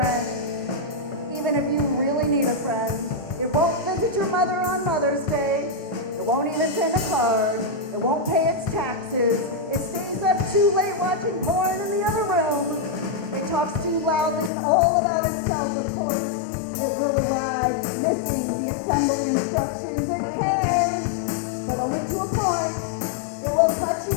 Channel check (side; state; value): right; drops out; at 14.5 s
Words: even if you really need a friend. It won't visit your mother on Mother's Day. It won't even send a card. It won't pay its taxes. It stays up too late watching porn in the other room. It talks too loudly and all about itself, of course. It will arrive missing the assembly instructions. It cares, but only to a point. It will cut you